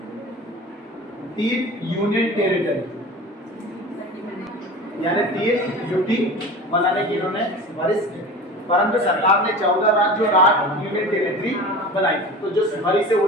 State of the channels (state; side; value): normal; both; correlation 0.35